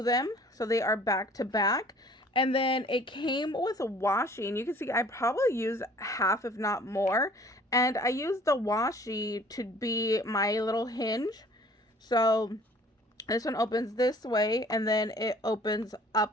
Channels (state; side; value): normal; both; correlation 0.52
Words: them so they are back to back. And then it came with a washi, and you can see I probably used half if not more. And I used the washi to be my little hinge. So this one opens this way and then it opens